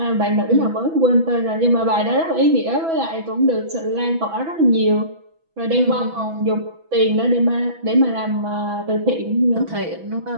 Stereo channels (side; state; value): left; late; 6.1 ms